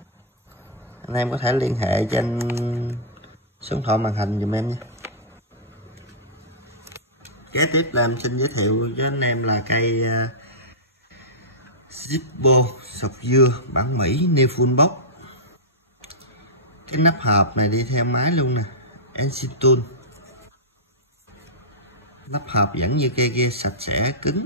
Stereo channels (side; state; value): both; normal; correlation -0.15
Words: Anh em có thể liên hệ trên số điện thoại màn hình giùm em nha. Kế tiếp là em xin giới thiệu với anh em là cây Zippo sọc dưa bản Mỹ new full box. Cái nắp hộp này đi theo máy luôn nè, Ensitul. Nắp hộp vẫn như cây kia, sạch sẽ cứng,